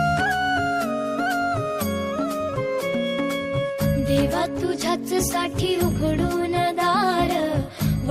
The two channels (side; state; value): both; identical; correlation 1.00